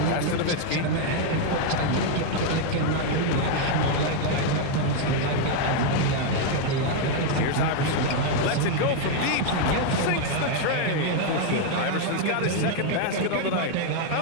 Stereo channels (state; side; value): different; both; correlation 0.00